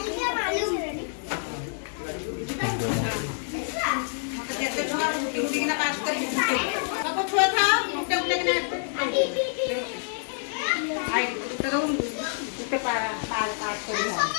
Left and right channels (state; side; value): silent; right; digital silence